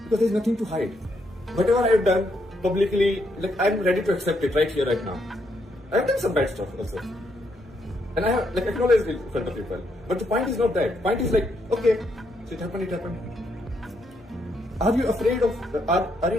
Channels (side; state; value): both; normal; correlation 0.76